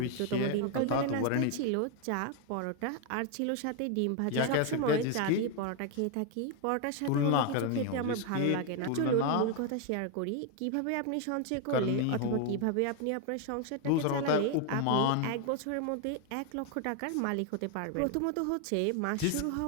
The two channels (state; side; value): different; both; correlation 0.01